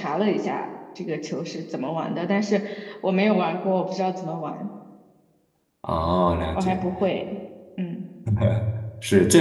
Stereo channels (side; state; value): both; identical; correlation 1.00